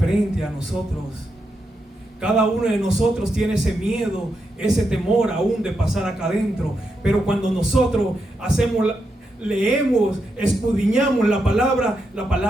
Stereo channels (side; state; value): both; normal; correlation 0.84